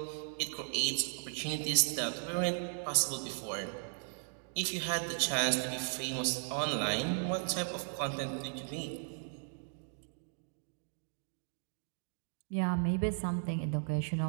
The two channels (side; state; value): left; silent; digital silence